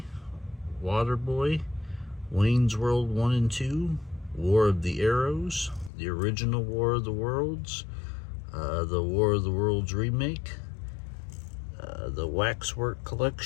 Waterboy, Wayne's World 1 and 2, War of the Arrows, the original War of the Worlds, the War of the Worlds remake, the Waxwork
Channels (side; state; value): right; drops out; at 5.9 s